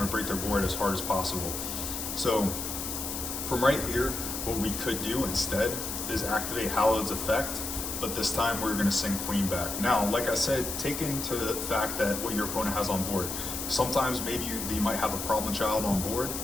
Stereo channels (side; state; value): left; noise; hiss, 5 dB below the sound